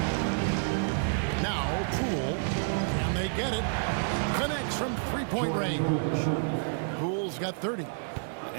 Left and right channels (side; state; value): left; silent; digital silence